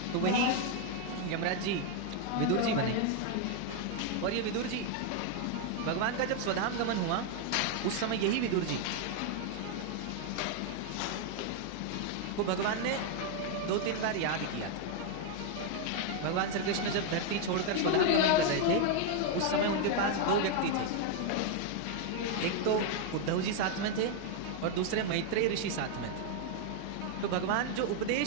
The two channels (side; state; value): both; different; correlation 0.00